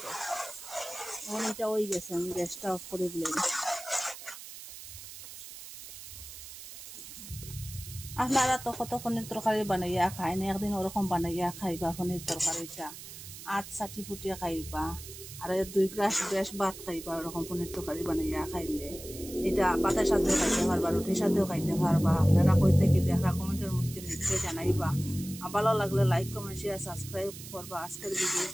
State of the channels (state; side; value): noise; right; hiss, 13 dB below the sound